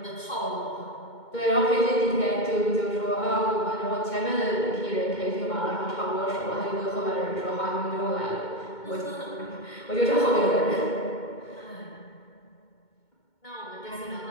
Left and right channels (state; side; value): late; right; 2.2 ms